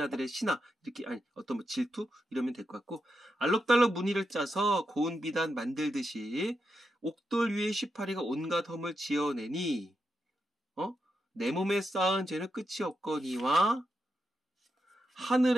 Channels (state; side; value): normal; both; correlation 0.86